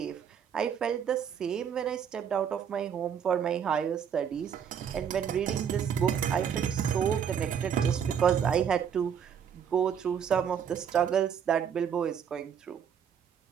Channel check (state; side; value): quieter; left; 8.0 dB